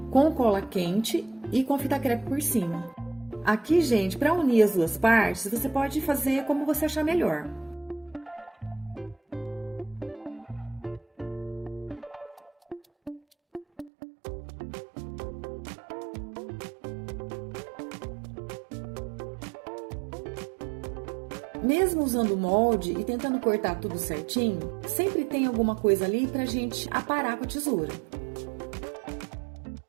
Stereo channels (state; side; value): drops out; left; at 13.9 s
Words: com cola quente e com fita crepe por cima. Aqui, gente, para unir as 2 partes, você pode fazer como você achar melhor. Mesmo usando o molde e tentando cortar tudo certinho, sempre tem alguma coisa ali pra gente aparar com a tesoura.